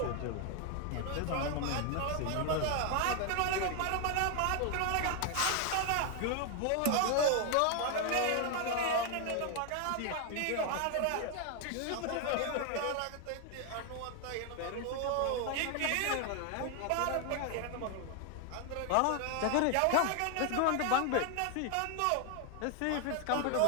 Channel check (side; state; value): both; different; correlation 0.01